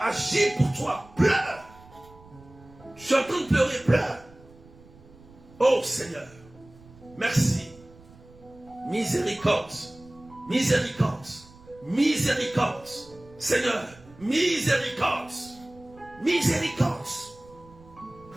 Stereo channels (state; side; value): noise; right; rumble, 23 dB below the sound